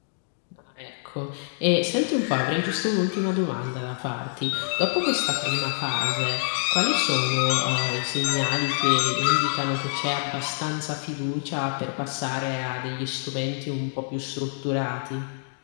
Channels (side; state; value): right; silent; digital silence